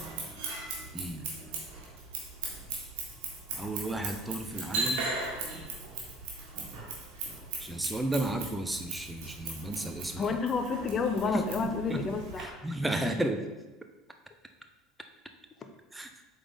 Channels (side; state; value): both; normal; correlation 0.56